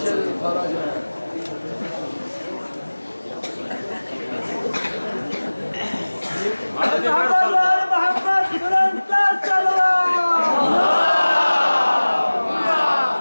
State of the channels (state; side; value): inverted; both; correlation -1.00